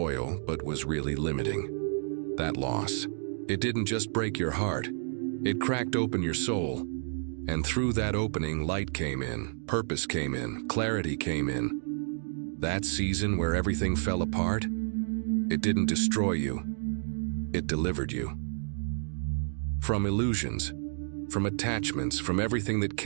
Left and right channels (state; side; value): silent; left; digital silence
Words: but was really limiting. That loss, it didn't just break your heart, it cracked open your soul. And through that opening, light came in, purpose came in, clarity came in. That season where everything fell apart, it didn't destroy you, it delivered you. From illusions, from attachments, from everything that